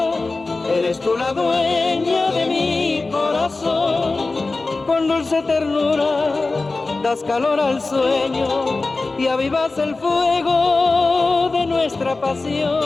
eres tú la dueña de mi corazón. Con dulce ternura das calor al sueño y avivas el fuego de nuestra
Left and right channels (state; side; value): quieter; right; 3.5 dB